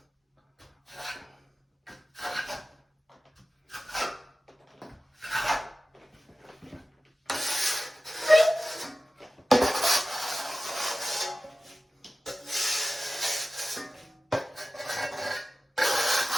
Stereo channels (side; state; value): both; normal; correlation 0.96